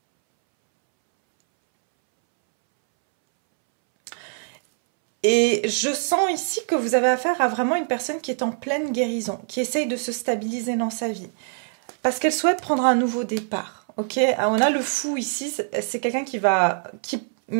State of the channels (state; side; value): silent; left; 63 dB below the other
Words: Et je sens ici que vous avez affaire à vraiment une personne qui est en pleine guérison, qui essaye de se stabiliser dans sa vie. Parce qu'elle souhaite prendre un nouveau départ. Ok, on a le fou ici, c'est quelqu'un